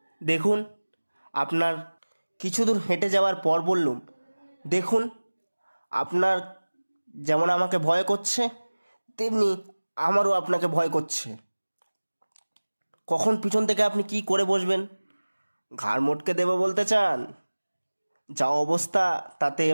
দেখুন আপনার কিছু দূর হেঁটে যাওয়ার পর বললুম, দেখুন, আপনার যেমন আমাকে ভয় করছে, তেমনি আমারও আপনাকে ভয় করছে। কখন পিছন থেকে আপনি কি করে বসবেন? ঘাড় মটকে দেবো বলতে চান? যা অবস্থা, তাতে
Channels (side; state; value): both; inverted; correlation -1.00